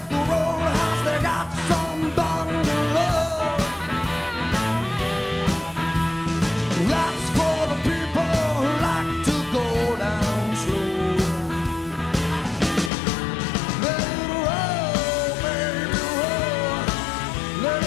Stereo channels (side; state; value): right; drops out; at 12.9 s